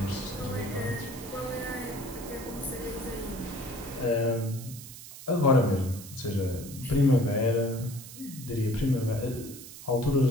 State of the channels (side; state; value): right; noise; hiss, 14 dB below the sound